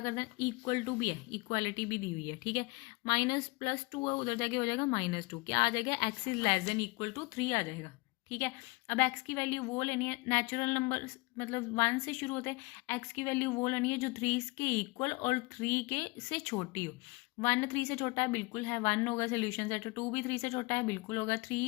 करना है इक्वल टू भी है इक्वालिटी भी दी हुई है. ठीक है. -+2 है उधर जाके हो जाएगा -2 क्या आ जाएगा x is less than equal to 3 आ जाएगा. ठीक है. अब x की वैल्यू वो लेनी है नेचुरल नंबर मतलब 1 से शुरू होते हैं. x की वैल्यू वो लेनी है जो 3 के इक्वल और 3 के से छोटी हो. 1 3 से छोटा है बिल्कुल है 1 होगा सोल्यूशन सेट. 2 भी 3 से छोटा है बिल्कुल होगा.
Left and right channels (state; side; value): quieter; right; 25.7 dB